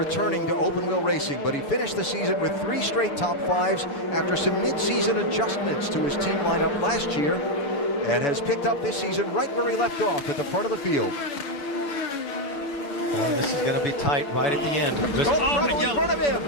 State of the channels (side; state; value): right; late; 7.0 ms